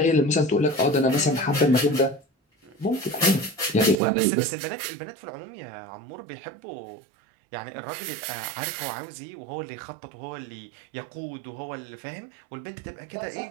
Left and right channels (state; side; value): drops out; left; at 4.0 s